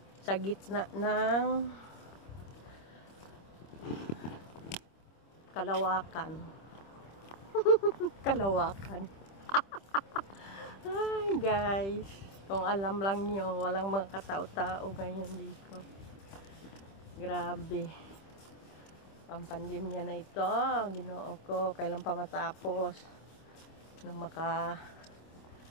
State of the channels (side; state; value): right; late; 26 ms